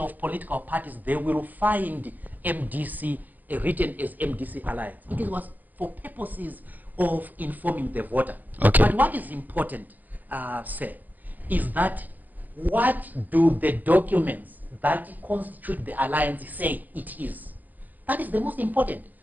political parties, they will find MDC written as MDC Alliance. It was for purposes of informing the voter. Okay. But what is important, sir, is that what do the documents that constitute the alliance say it is? That is the most important.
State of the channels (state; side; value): late; left; 0.083 ms